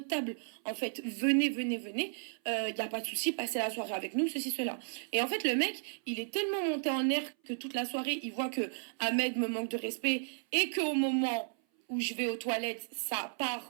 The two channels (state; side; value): silent; left; 55 dB below the other